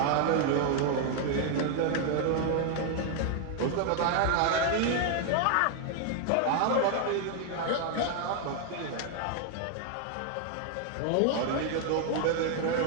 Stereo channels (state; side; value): different; both; correlation 0.00